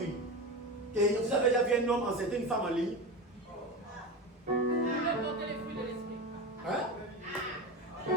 Et vous avez déjà vu un homme enceinter une femme en ligne? Hein?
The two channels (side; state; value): both; normal; correlation 0.23